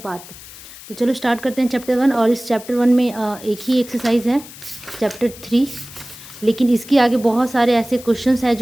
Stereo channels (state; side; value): noise; left; hiss, 17 dB below the sound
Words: तो चलो स्टार्ट करते हैं चैप्टर 1। और इस चैप्टर 1 में एक ही एक्सरसाइज है चैप्टर 3, लेकिन इसके आगे बहुत सारे ऐसे क्वेश्चंस हैं